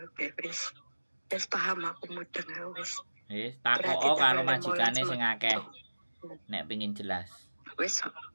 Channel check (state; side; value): inverted; both; correlation -1.00